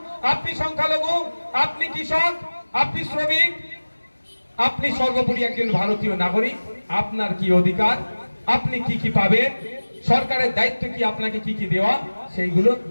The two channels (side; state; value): both; inverted; correlation -1.00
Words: আপনি সংখ্যালঘু, আপনি কৃষক, আপনি শ্রমিক, আপনি সর্বোপরি একজন ভারতীয় নাগরিক, আপনার কি অধিকার, আপনি কি কি পাবেন, সরকারের দায়িত্ব কি, আপনাকে কি কি দেওয়া, সেইগুলো